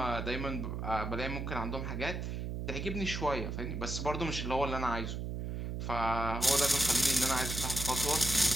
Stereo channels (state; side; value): noise; right; hum, 3 dB below the sound